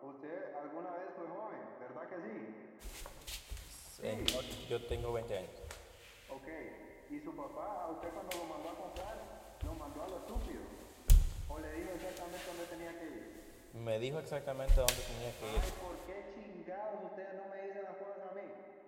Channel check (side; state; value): both; identical; correlation 1.00